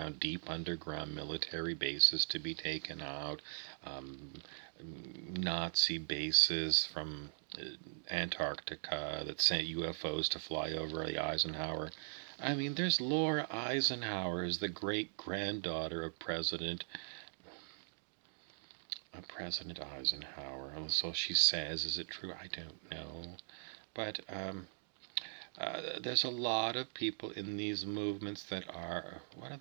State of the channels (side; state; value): left; silent; digital silence